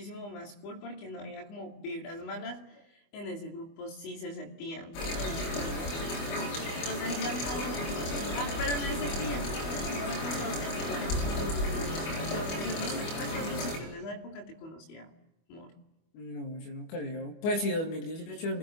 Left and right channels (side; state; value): right; late; 24 ms